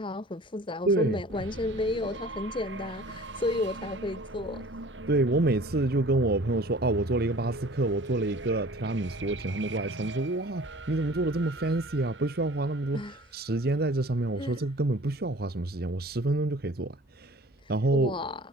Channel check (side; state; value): both; normal; correlation 0.47